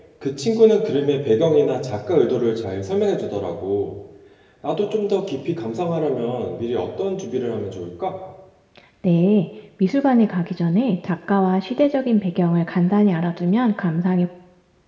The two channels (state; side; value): identical; both; correlation 1.00